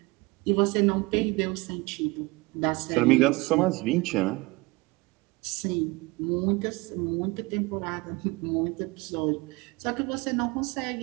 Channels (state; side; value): quieter; left; 23.8 dB